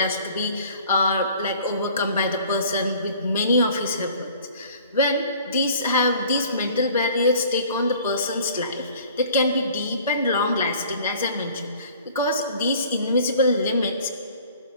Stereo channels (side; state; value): both; inverted; correlation -0.50